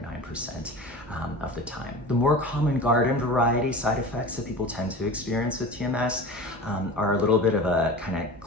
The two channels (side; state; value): both; normal; correlation 0.34